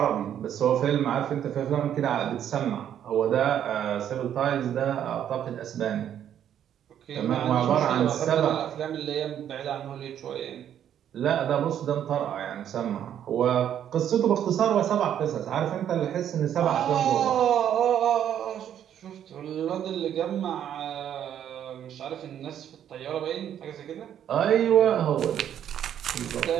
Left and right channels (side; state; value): left; quieter; 10.0 dB